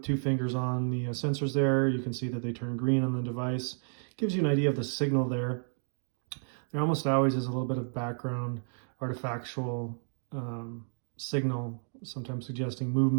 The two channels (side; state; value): left; silent; digital silence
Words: 2 fingers on the sensors there. You can see that they turn green on the device. Gives you an idea of the signal there. There almost always is a little bit of background artifactual signal, sometimes suggesting